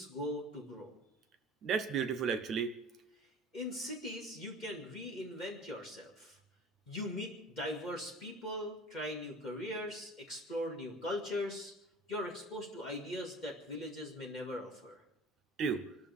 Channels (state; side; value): normal; both; correlation 0.41